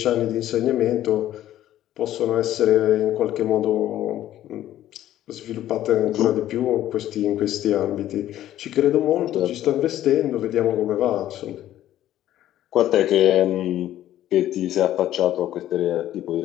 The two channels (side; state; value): right; quieter; 12.8 dB